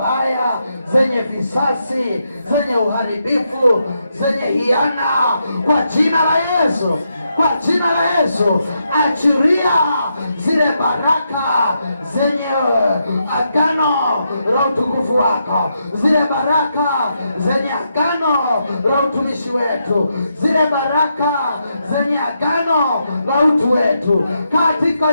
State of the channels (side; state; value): both; inverted; correlation -0.82